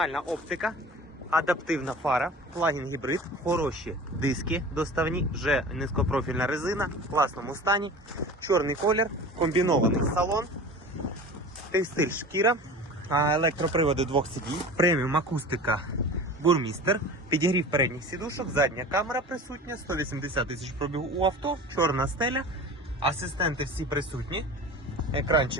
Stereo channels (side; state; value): both; normal; correlation 0.37